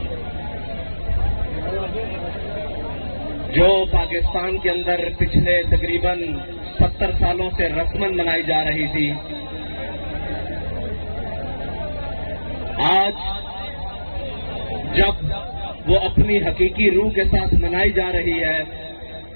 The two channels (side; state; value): both; inverted; correlation -1.00